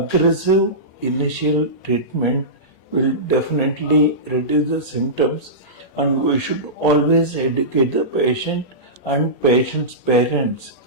initial treatment will definitely reduce the symptoms, and we should always educate the patient and patient's parents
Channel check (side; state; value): right; late; 8.7 ms